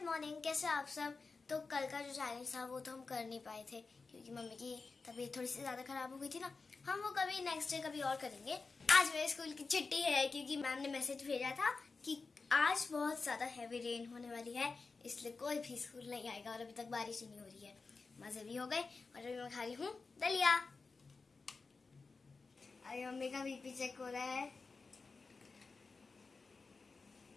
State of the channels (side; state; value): right; quieter; 4.2 dB